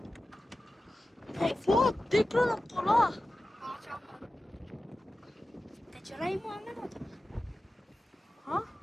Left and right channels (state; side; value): normal; both; correlation 0.95